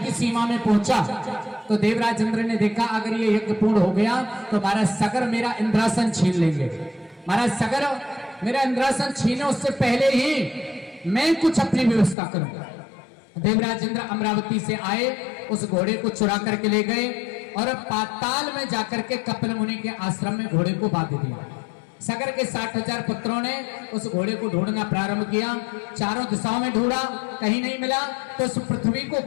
सीमा में पहुंचा तो देवराज इंद्र ने देखा अगर ये यज्ञ पूर्ण हो गया तो महाराज सगर मेरा इंद्रासन छीन लेंगे। महाराज सगर मेरा इंद्रासन छीने उससे पहले ही मैं कुछ अपनी व्यवस्था करूंगा। देवराज इंद्र अमरावती से आए, उस घोड़े को चुरा करके ले गए और पाताल में जाकर के कपिल मुनि के आश्रम में घोड़े को बांध दिया। सगर के 60,000 पुत्रों ने उस घोड़े को ढूंढना प्रारंभ किया, चारों दिशाओं में ढूंढा, कहीं नहीं मिला तो उस पृथ्वी को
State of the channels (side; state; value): right; drops out; at 12.2 s